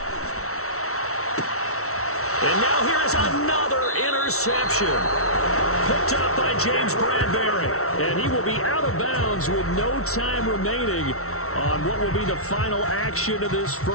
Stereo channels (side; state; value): right; late; 0.63 ms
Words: And now here is another interception. Picked up by James Bradbury. And he will be out of bounds with no time remaining on what will be the final action of this